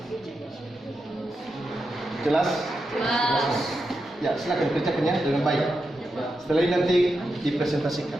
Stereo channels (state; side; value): normal; both; correlation 0.87